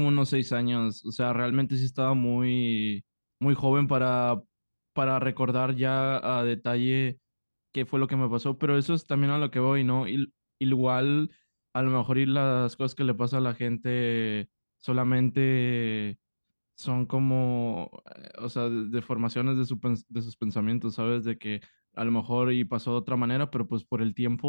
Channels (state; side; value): inverted; both; correlation -1.00